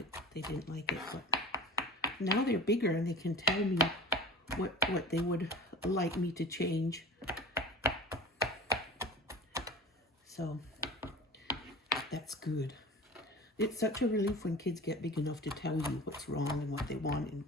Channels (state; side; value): normal; both; correlation 0.36